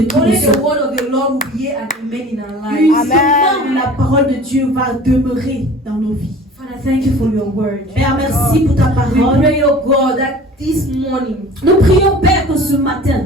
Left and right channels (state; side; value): normal; both; correlation 0.43